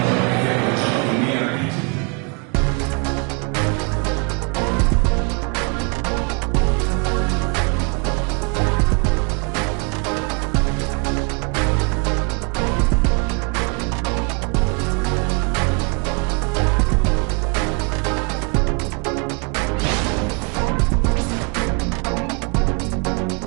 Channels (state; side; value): quieter; left; 34.9 dB